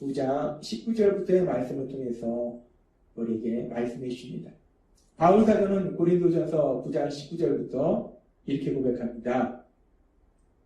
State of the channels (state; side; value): identical; both; correlation 1.00